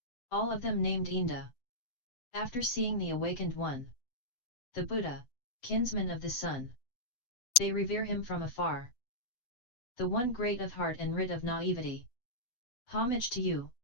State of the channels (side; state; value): right; late; 7.9 ms